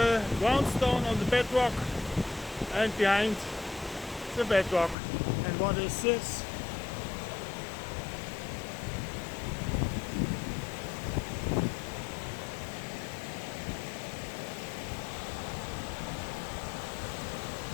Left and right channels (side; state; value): right; drops out; at 5.0 s